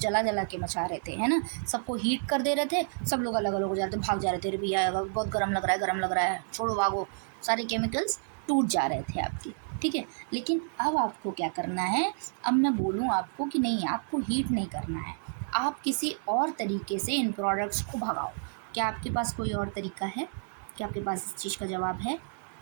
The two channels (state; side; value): silent; left; 58 dB below the other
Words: जला के मचा रहे थे, है ना, सबको हीट कर दे रहे थे, सब लोग अलग अलग हो जाते, भाग जा रहे थे, अरे भैया बहुत गर्म लग रहा है, गर्म लग रहा है, छोड़ो भागो, सारे केमिकल्स टूट जा रहे थे आपके, ठीक है। लेकिन अब आपको क्या करना है, अब मैं बोलूँ आपको कि नहीं, आपको हीट नहीं करना है, आप किसी और तरीके से इन प्रोडक्ट्स को भगाओ। क्या आपके पास कोई और तरीका है, क्या आपके पास इस चीज़ का जवाब है,